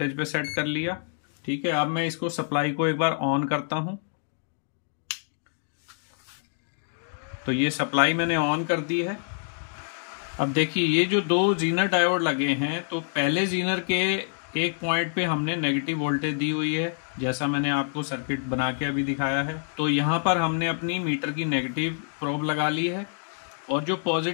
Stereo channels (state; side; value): silent; right; digital silence